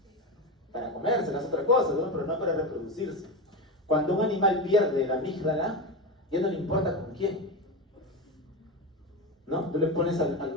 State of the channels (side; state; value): both; normal; correlation 0.19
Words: Para comérsela es otra cosa, ¿no? Pero no para reproducirse. Cuando un animal pierde la amígdala, ya no le importa con quién, ¿no? Tú le pones al